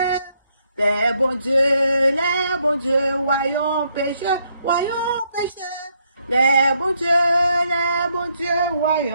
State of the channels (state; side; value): inverted; both; correlation -0.74